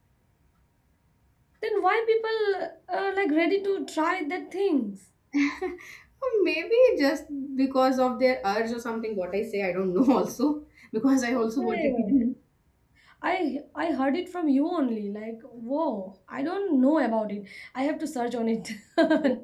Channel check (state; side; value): identical; both; correlation 1.00